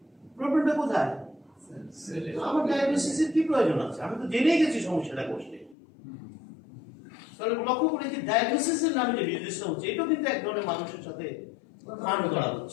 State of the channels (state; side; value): drops out; right; at 5.8 s